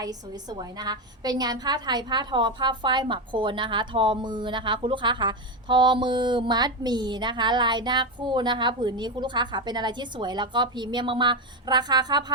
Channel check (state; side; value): normal; both; correlation 0.12